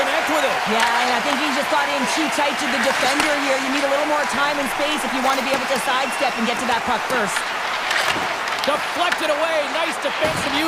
with it. Yeah, and I think he just got in too tight to the defender here. You need a little more time and space if you want to be able to sidestep and get to that puck first. Deflected away. Nice defensive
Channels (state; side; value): identical; both; correlation 1.00